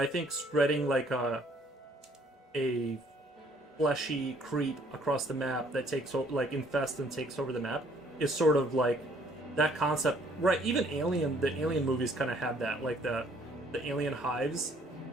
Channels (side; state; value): both; normal; correlation 0.62